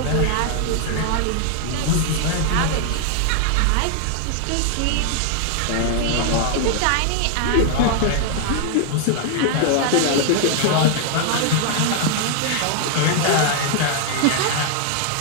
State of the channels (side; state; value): both; different; correlation 0.00